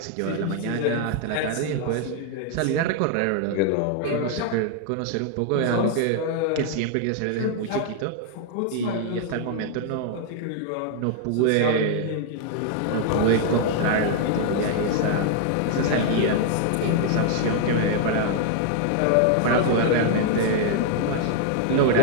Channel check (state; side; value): different; both; correlation 0.00